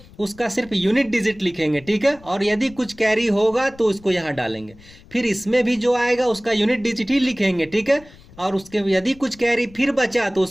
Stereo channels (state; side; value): noise; left; rumble, 23 dB below the sound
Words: उसका सिर्फ यूनिट डिजिट लिखेंगे। ठीक है, और यदि कुछ कैरी होगा तो उसको यहाँ डालेंगे। फिर इसमें भी जो आएगा उसका यूनिट डिजिट ही लिखेंगे। ठीक है, और उसके यदि कुछ कैरी फिर बचा तो